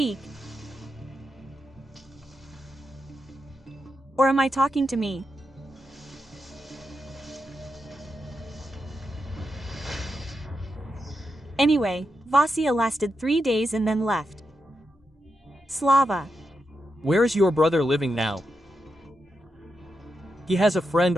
Or am I talking to me? Anyway, Vasia lasted 3 days and then left. Slava. Where is your brother living now? He has a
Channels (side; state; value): both; normal; correlation 0.86